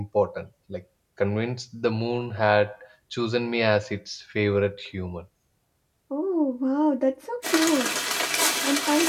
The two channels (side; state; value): both; identical; correlation 1.00